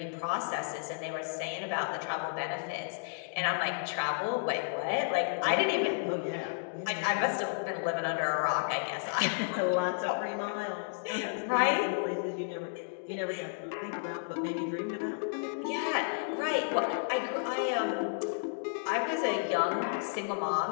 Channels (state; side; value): silent; right; digital silence